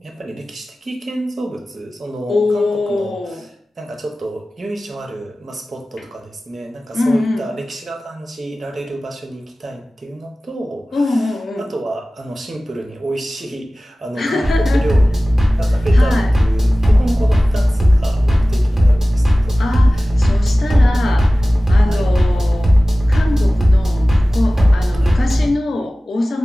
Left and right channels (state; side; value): normal; both; correlation 0.97